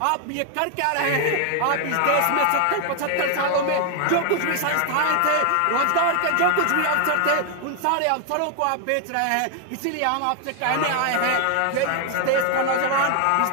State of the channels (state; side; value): different; both; correlation 0.00